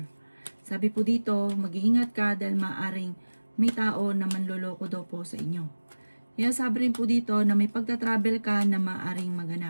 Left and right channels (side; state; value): both; inverted; correlation -1.00